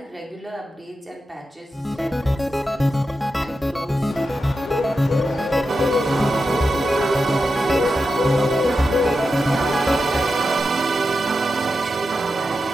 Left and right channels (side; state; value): both; normal; correlation 0.89